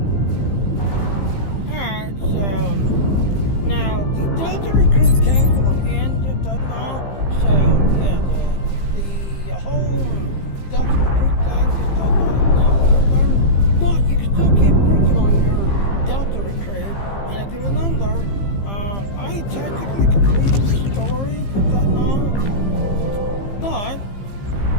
Alright, so now the Delta recruit came to an end at that now. So yeah, the whole Delta recruit thing is now over. But you can still keep working on your Delta recruit. And if you remember, I technically completed the story with that now. But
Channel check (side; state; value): right; late; 15 ms